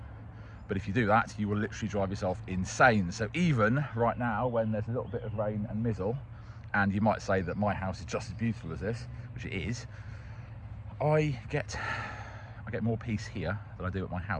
But if you do that, you will literally drive yourself insane. So even right now, when there's a little bit of rain and mizzle, and you might say that my house is just as beautiful as this, which it is, I get more peace here than I do at my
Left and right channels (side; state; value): both; identical; correlation 1.00